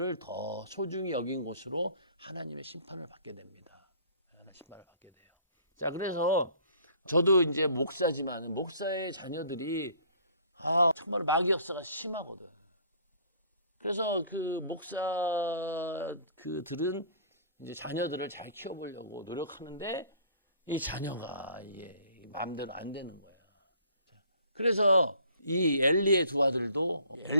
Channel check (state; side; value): inverted; both; correlation -0.55